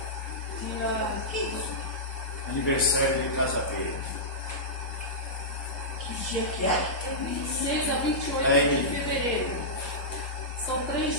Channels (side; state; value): both; normal; correlation -0.13